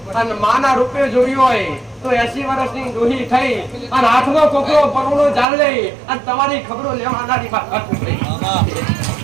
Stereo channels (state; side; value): drops out; left; at 5.5 s